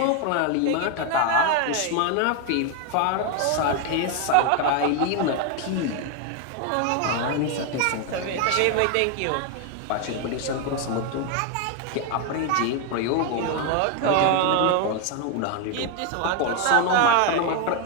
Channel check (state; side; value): different; both; correlation 0.01